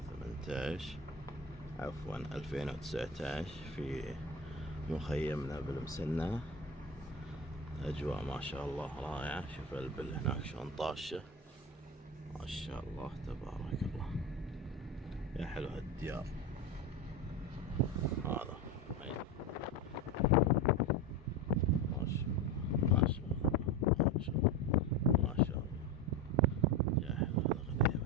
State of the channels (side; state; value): both; normal; correlation 0.21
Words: عفوا 2019 في مخيمنا بالمسنة. أجواء ما شاء الله رائعة. شوف البل هناك شلون طاشة ما شاء الله تبارك الله. يا حلو هالديار. هذا ما شاء الله ما شاء الله ما شاء الله ما شاء الله. يا حلو